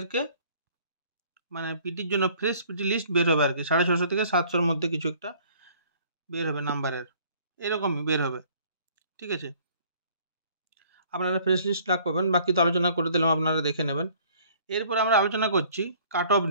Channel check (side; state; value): both; inverted; correlation -0.56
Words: মানে পিটির জন্য ফ্রেশ পিটি লিস্ট বের হবে আর কি। 650 থেকে 700-র মধ্যে কিছু একটা বের হবে নাম্বারের, এরকমই বের হবে। ঠিক আছে, আপনারা ফ্রেশ লিস্ট লাগ পাবেন, বাকি তো আলোচনা করে দিলাম, আপনারা দেখে নেবেন। এরপর আমরা আলোচনা করছি কাট অফ